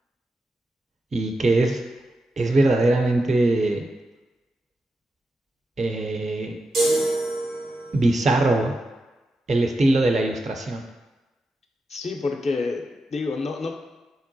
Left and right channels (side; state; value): both; normal; correlation 0.88